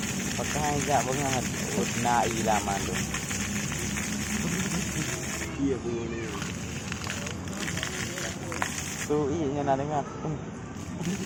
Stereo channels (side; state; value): both; identical; correlation 1.00